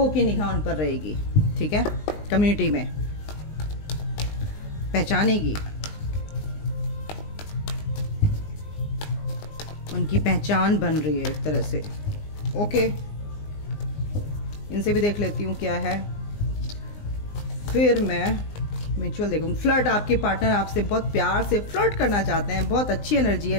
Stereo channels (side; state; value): right; late; 19 ms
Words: की निगाह उन पर रहेगी, ठीक है। कम्युनिटी में पहचानेगी। उनकी पहचान बन रही है एक तरह से। ओके, इनसे भी देख लेती हूँ क्या है, फिर मैं म्यूचुअल देखूँ। फ्लर्ट, आपके पार्टनर आपसे बहुत प्यार से फ्लर्ट करना चाहते हैं, बहुत अच्छी एनर्जी है।